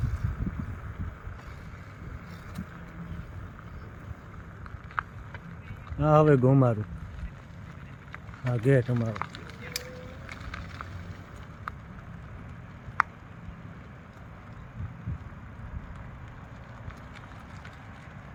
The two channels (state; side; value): identical; both; correlation 1.00